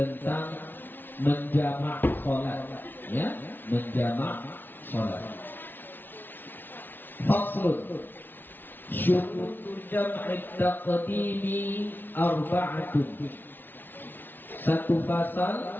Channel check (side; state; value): right; late; 0.094 ms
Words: menjamak salat, ya, menjamak salat. Faslun syurutul jam'i taqdimi arba'atun. Satu